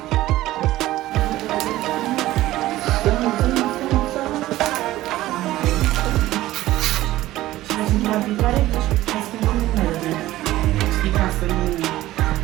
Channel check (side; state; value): left; quieter; 15.9 dB